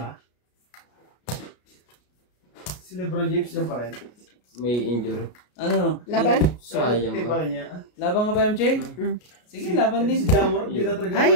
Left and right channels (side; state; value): right; late; 33 ms